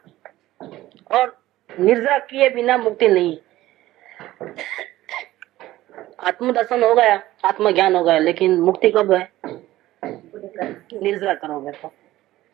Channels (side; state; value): left; quieter; 15.8 dB